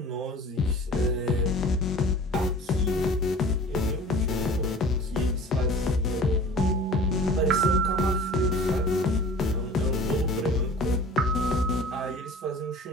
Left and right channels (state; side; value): normal; both; correlation 0.43